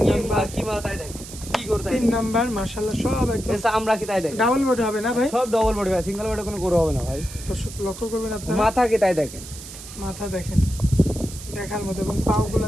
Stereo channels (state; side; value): noise; right; hiss, 14 dB below the sound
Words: নাম্বার কি মাল তাই দেখেন, কি গরু তাই তিন নাম্বার মাশাআল্লাহ সব একদম দেখেন, আমরা কি তাই দেখেন, ডাবল বডি হবে না ভাই? সব ডবল বডি ভাই, সিঙ্গেল বডি কোনো গরু হবে না ভাই। দর্শক লক্ষ্য করবেন আপনারা, মাথা কি তাই দেখেন, মাথা দেখেন দেখার মতো এবং পাগুলো